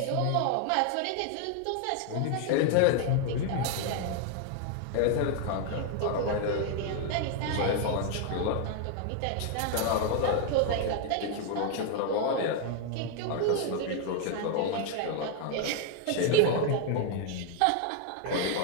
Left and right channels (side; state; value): both; different; correlation 0.00